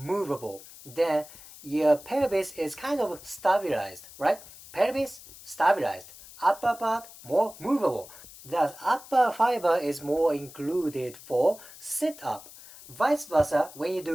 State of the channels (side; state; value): left; noise; hiss, 18 dB below the sound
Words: Then your pelvis is kind of stabilized, right? Pelvis stabilized. Upper part more movable. Thus, upper fiber is more included for sit-up. Vice versa, when you